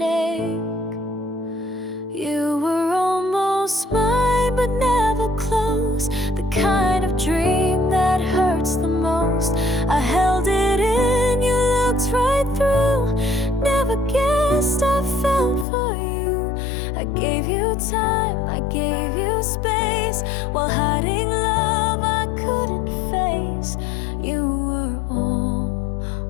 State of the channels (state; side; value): drops out; right; at 15.7 s